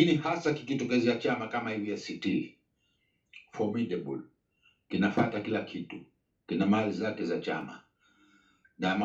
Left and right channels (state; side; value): identical; both; correlation 1.00